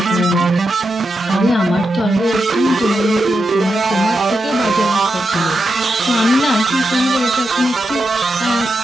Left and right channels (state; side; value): normal; both; correlation 0.87